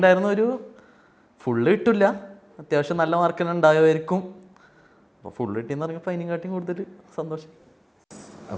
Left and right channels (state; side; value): identical; both; correlation 1.00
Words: ഒരു ഫുള്ള് കിട്ടില്ല, അത്യാവശ്യം നല്ല മാർക്ക് തന്നെ ഉണ്ടാകുമായിരിക്കും. അപ്പോൾ ഫുള്ള് കിട്ടിയെന്ന് പറഞ്ഞപ്പോൾ അതിനെക്കാട്ടിയും കൂടുതൽ സന്തോഷം.